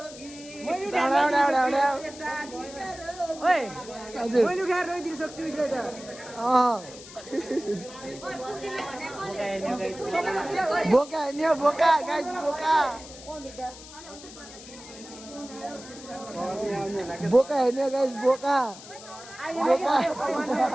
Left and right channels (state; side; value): noise; left; hiss, 16 dB below the sound